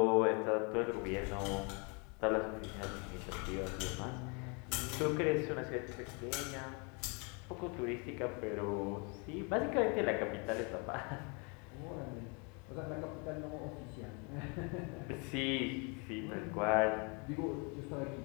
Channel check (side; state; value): right; quieter; 33.6 dB